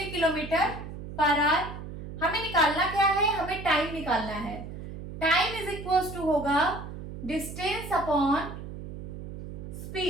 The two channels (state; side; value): noise; right; hum, 10 dB below the sound